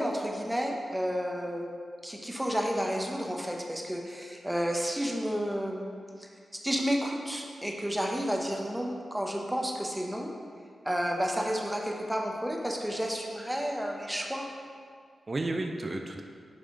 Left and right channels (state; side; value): normal; both; correlation 0.95